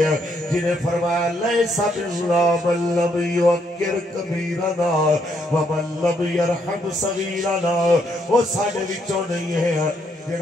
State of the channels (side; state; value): both; normal; correlation 0.73